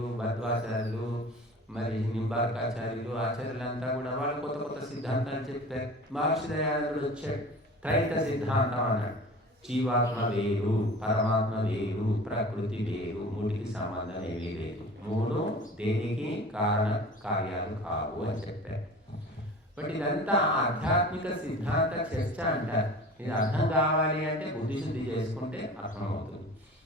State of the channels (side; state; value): both; normal; correlation 0.40